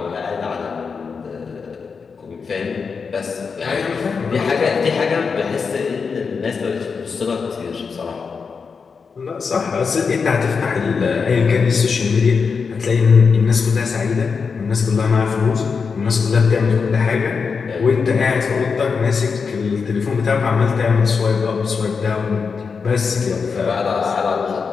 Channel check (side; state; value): right; quieter; 5.4 dB